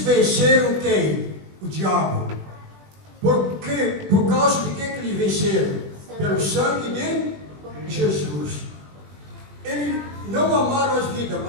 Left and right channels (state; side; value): late; left; 20 ms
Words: venceram quem? O diabo. Por causa de que eles venceram? Pelo sangue de Jesus. Eles não amaram as vidas,